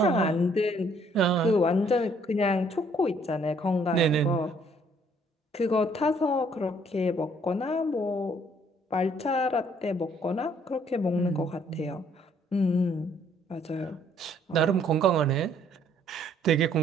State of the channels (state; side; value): normal; both; correlation 0.63